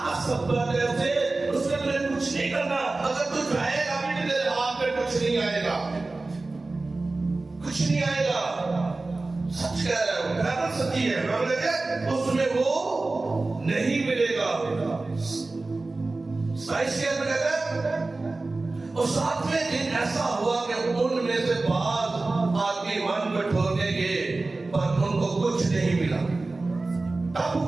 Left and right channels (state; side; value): quieter; left; 3.3 dB